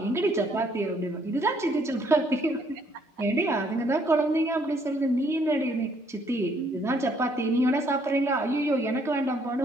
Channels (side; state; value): both; normal; correlation 0.67